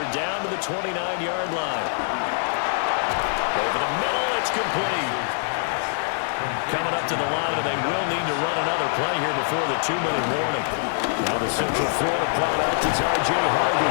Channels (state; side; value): silent; right; 57 dB below the other